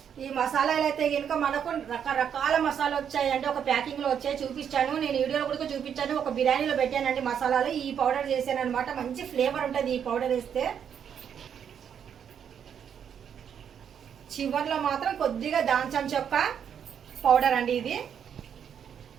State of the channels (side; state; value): left; quieter; 8.2 dB